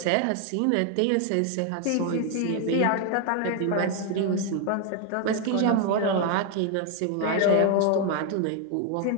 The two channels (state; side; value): different; both; correlation 0.01